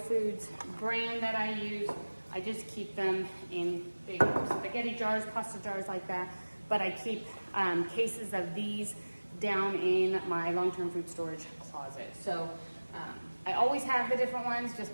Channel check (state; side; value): inverted; both; correlation -1.00